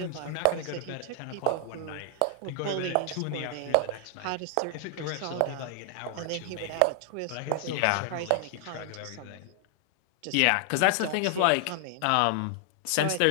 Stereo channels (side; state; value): both; different; correlation 0.00